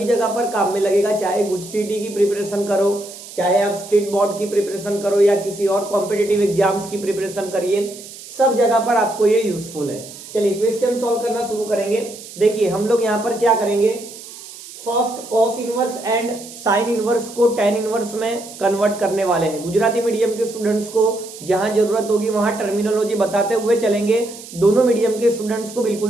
जगह पर काम में लगेगा, चाहे गुजसीटी की प्रिपरेशन करो, चाहे आप स्टेट बोर्ड की प्रिपरेशन करो या किसी और कॉम्पिटिटिव एग्जाम्स की प्रिपरेशन करिए, सब जगह पर आपको ये यूजफुल है। चलिए क्वेश्चन सॉल्व करना शुरू करेंगे। देखिए हम लोग यहाँ पर क्या करेंगे, first cos inverse and sine inverse को टेन इनवर्स में कन्वर्ट करने वाले हैं। गुजराती मीडियम के स्टूडेंट्स को जहां जरूरत होगी वहां टर्मिनोलॉजी बताते हुए चलेंगे, दोनों मीडियम के स्टूडेंट्स को बिल्कुल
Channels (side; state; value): right; noise; hiss, 15 dB below the sound